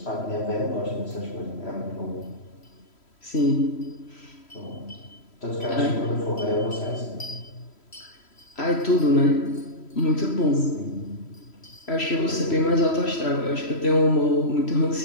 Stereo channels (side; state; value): right; late; 3.1 ms